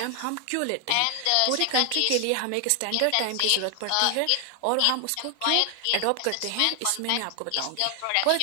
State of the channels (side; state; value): both; different; correlation 0.00